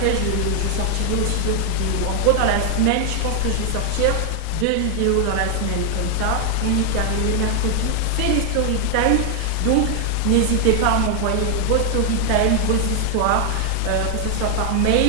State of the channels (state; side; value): different; both; correlation 0.00